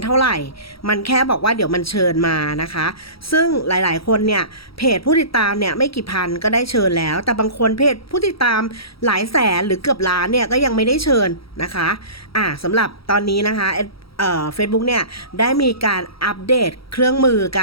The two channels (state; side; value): late; right; 0.75 ms